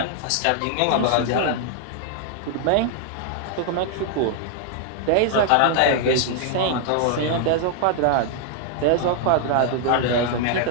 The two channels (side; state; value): both; different; correlation 0.00